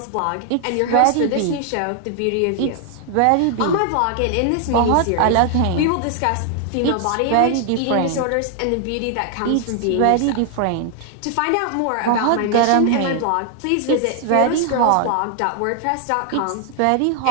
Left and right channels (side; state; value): both; different; correlation 0.00